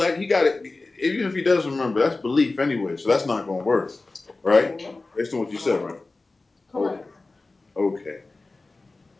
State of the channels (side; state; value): right; quieter; 3.4 dB